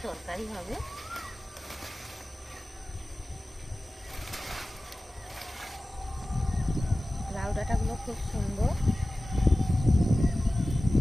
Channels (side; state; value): both; normal; correlation 0.96